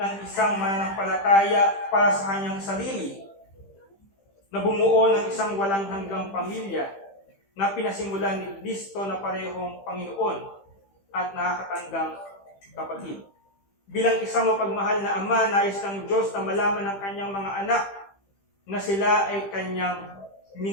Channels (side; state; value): right; late; 15 ms